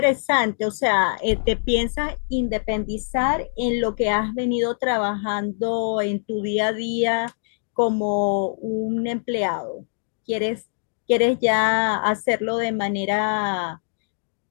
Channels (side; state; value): right; silent; digital silence